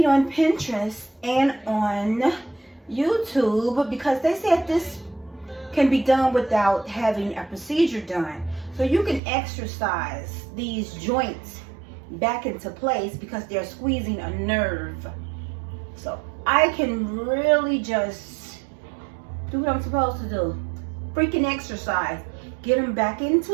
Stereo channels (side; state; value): left; drops out; at 9.2 s